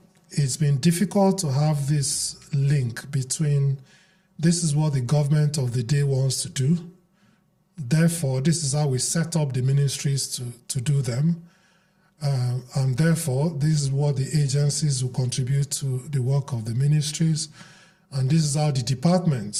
it's been difficult to have this link between this is what the government of the day wants to do. Therefore, this is how we set up the ministries to do them. And therefore, this is what the agencies will contribute to the work of the ministries. And this is how the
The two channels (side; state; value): both; identical; correlation 1.00